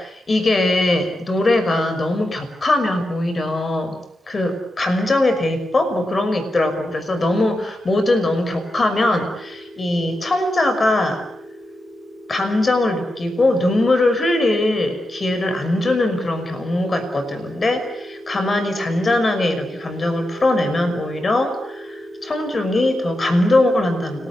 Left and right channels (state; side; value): normal; both; correlation 0.88